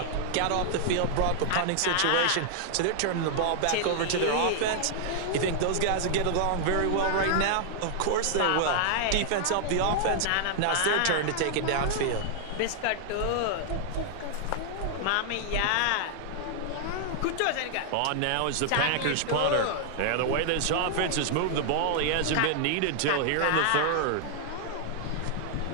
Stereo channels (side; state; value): both; different; correlation 0.00